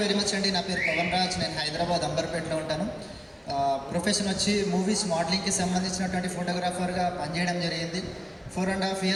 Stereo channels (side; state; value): both; identical; correlation 1.00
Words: very much అండి. నా పేరు పవన్ రాజ్. నేను హైదరాబాద్ అంబర్పేటలో ఉంటాను. ప్రొఫెషన్ వచ్చి మూవీస్ మోడలింగ్కి సంబంధించినటువంటి ఫోటోగ్రాఫర్గా పనిచేయడం జరిగింది. 4.5